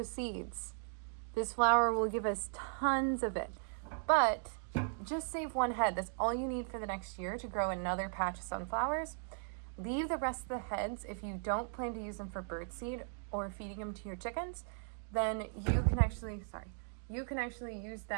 seeds. This flower will give us tons of it, but just save one head. That's all you need for the next year to grow another patch of sunflowers. Leave the rest of the heads. If you don't plan to use them for birdseed or feeding them to your chickens, then you can actually use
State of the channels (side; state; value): left; silent; digital silence